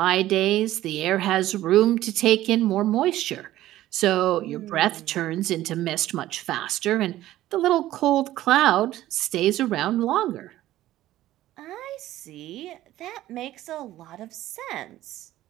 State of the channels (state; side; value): quieter; left; 14.5 dB